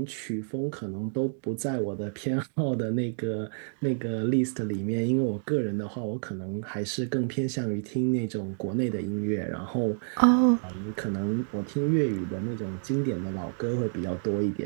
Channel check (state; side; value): silent; left; digital silence